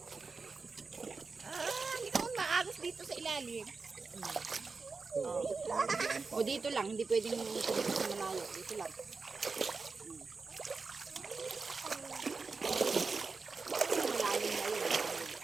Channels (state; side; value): quieter; left; 4.4 dB